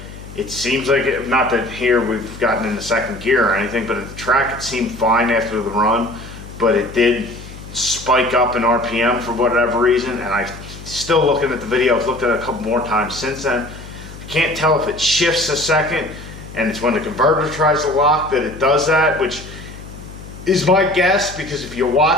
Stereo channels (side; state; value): left; noise; hum, 15 dB below the sound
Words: it seems like, not that here we've gotten into second gear or anything, but at the track it seemed fine after the run, but it did spike up in RPM for whatever reason, and I still looking at the video, I've looked at it a couple more times since then. I can't tell if it shifts a second, and it's when the converter tries to lock that it does that, which is my guess, because if you